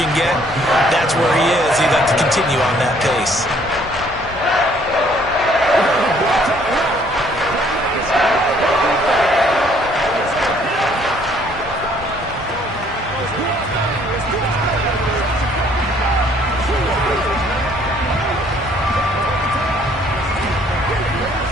get. That's where he is. He'd like to continue on that pace.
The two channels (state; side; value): normal; both; correlation 0.62